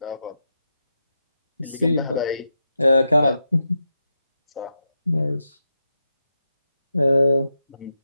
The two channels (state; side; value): inverted; both; correlation -0.86